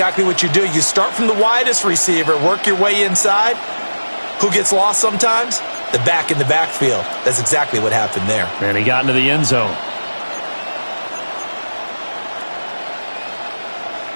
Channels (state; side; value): inverted; both; correlation -1.00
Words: what you do. You start from the widest receiver, work your way inside. Who gets lost sometimes? The back in the backfield. That's exactly what happened there. And he got into the end zone.